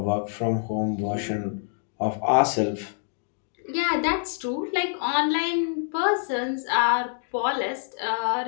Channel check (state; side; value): silent; right; digital silence